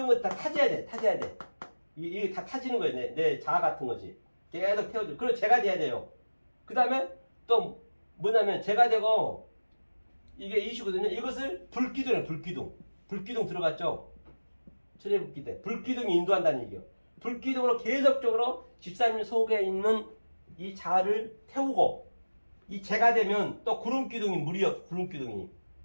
다 타져야 돼. 이게 다 타지는 거예요. 내 자아 같은 것이 계속 태워줘. 그리고 제가 돼야 돼요. 그 다음에 또 뭐냐면 제가 되고 이게 이슈거든요. 이것을 불기둥이에요. 불기둥 들어갔죠. 철회복기 때 불기둥이 인도한다는 얘기예요. 불기둥으로 계속적으로 집사님 속에 있는 이 자아를 태우고 이 제가 되면 또 구름기둥이 물이요.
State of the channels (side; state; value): both; inverted; correlation -1.00